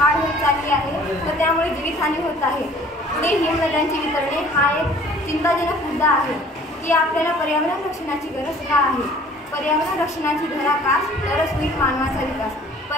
होत चालली आहे व त्यामुळे जीवितहानी होत आहे। पुढे हिमनद्यांची वितरणे हा एक चिंताजनक मुद्दा आहे की आपल्याला पर्यावरण रक्षणाची गरज का आहे। पर्यावरण रक्षणाची धराकास तरच होईल मानवाचा विकास,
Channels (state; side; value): normal; both; correlation 0.52